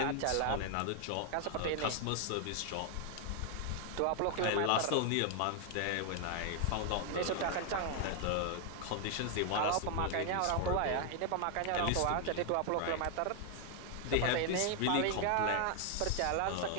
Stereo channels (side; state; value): both; different; correlation 0.00